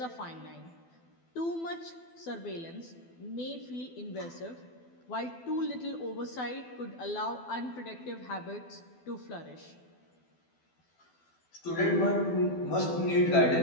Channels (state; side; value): late; right; 12 ms